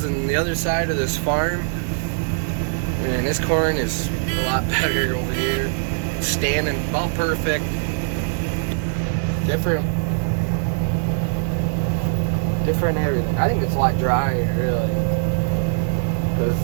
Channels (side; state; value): left; silent; digital silence